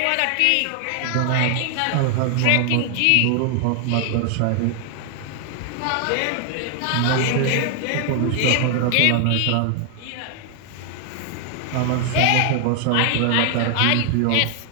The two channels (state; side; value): different; both; correlation 0.00